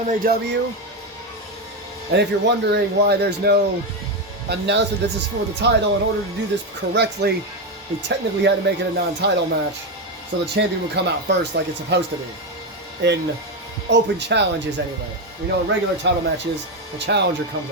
MAW. And if you're wondering why there's no announcement this is for the title, in order to do this correctly, we technically had to make it a non-title match. So the champion would come out first like it's supposed to be. In open challenges anyway. We know in regular title matches, the challenger comes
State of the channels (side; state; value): both; normal; correlation 0.10